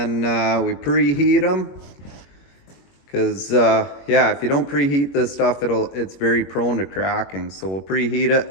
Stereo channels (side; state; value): right; late; 22 ms